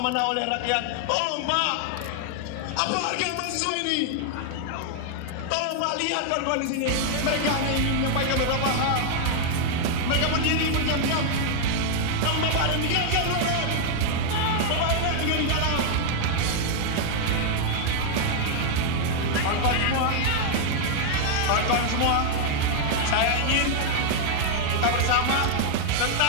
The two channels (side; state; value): both; different; correlation 0.00